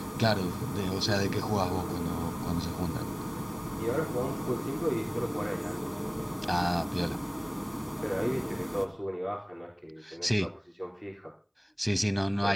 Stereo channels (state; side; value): identical; both; correlation 1.00